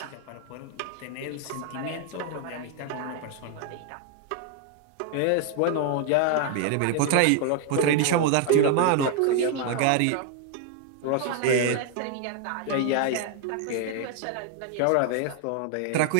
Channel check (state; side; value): different; both; correlation 0.00